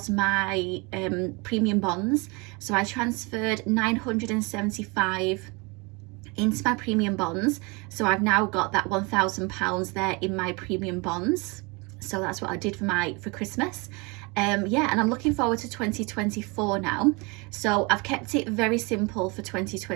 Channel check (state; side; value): quieter; left; 28.2 dB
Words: my premium bonds. So I transferred 975 into my premium bonds, so I've now got that £1,000 there in my premium bonds. So that's what I did for Christmas. Yeah, and I'm looking forward to 2024 now. So I've kept it very simple for